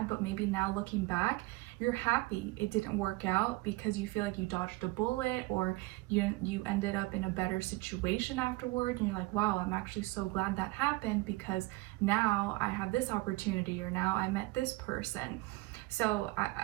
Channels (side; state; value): left; quieter; 21.4 dB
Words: but maybe now looking back, you're happy it didn't work out, because you feel like you dodged a bullet, or you ended up in a better situation afterward, and you're like, wow, I'm actually so glad that happened, because now I have this opportunity, or now I met this person. So